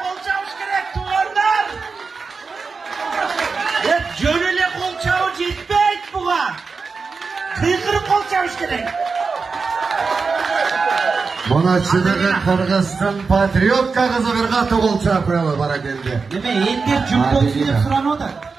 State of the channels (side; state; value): left; quieter; 4.7 dB